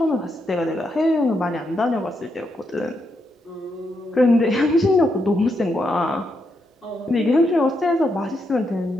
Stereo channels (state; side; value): normal; both; correlation 0.81